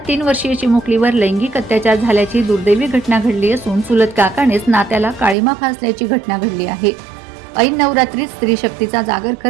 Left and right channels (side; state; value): left; drops out; at 5.4 s